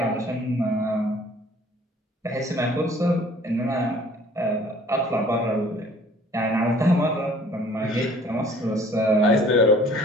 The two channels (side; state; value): both; normal; correlation 0.53